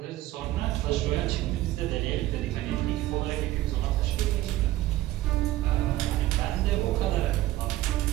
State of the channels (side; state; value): left; quieter; 15.8 dB